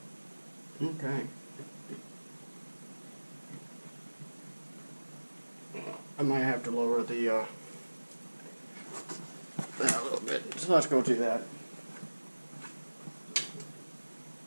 Okay. I might have to lower the that a little bit. So let's go do that.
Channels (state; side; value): inverted; both; correlation -1.00